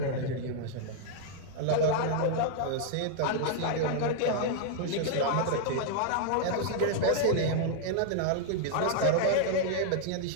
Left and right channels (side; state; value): both; different; correlation -0.01